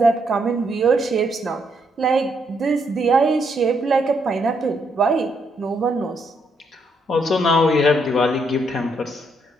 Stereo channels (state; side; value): normal; both; correlation 0.75